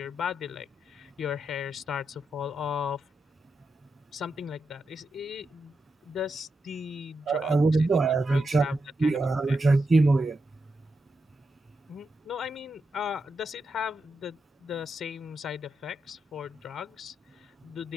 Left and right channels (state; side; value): normal; both; correlation 0.86